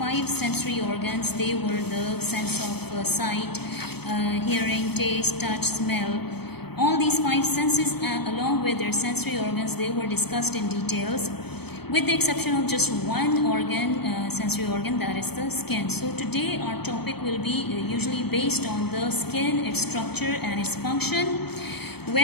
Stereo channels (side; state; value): right; late; 0.97 ms